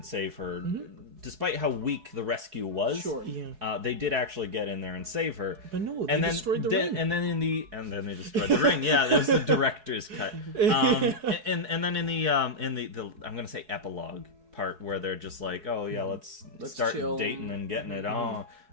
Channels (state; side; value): late; left; 4.7 ms